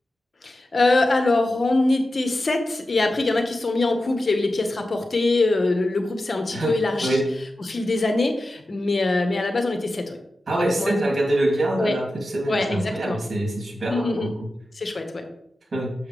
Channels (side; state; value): both; normal; correlation 0.92